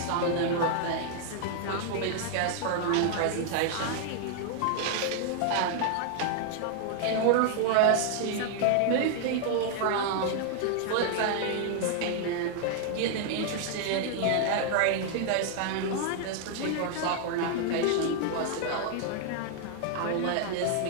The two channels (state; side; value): different; both; correlation 0.00